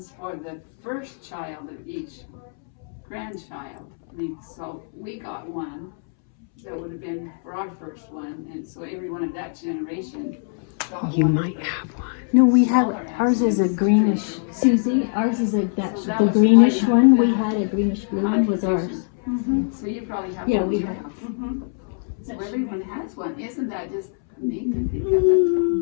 for the first child of each grandchild. So we got one that would have been for our first one, and so everyone of that generation got You one. might have one. No, we have, ours is a greenish, Susie, ours is like that, the greenish one, we had a greenish blue one was ours. So you probably have Yeah, one. we too. have. So everyone has one. Isn't that just neat to think of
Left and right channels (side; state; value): right; silent; 63 dB below the other